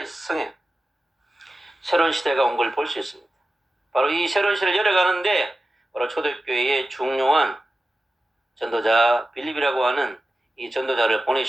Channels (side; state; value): both; normal; correlation 0.94